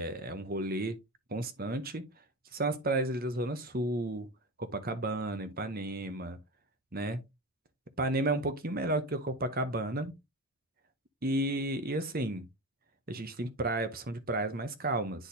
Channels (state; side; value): normal; both; correlation 0.25